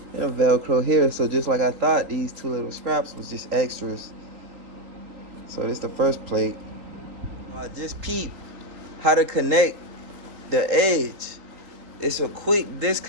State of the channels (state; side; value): late; left; 3.8 ms